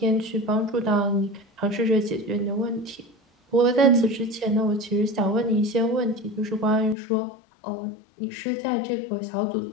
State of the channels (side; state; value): right; drops out; at 7.0 s